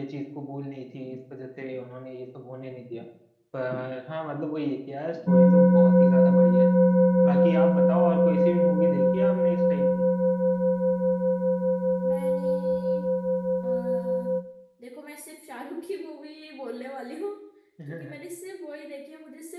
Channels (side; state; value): both; identical; correlation 1.00